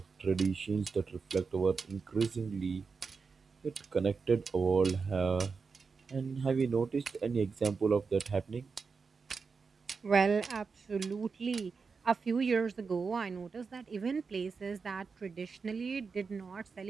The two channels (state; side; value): quieter; left; 5.0 dB